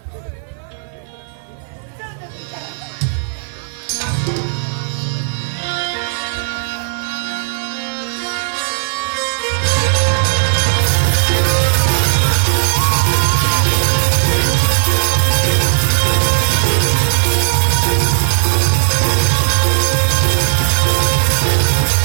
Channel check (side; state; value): left; silent; digital silence